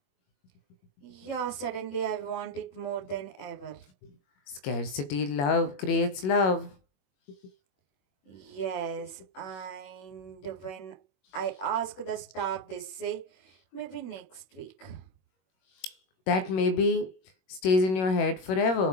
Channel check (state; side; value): late; right; 21 ms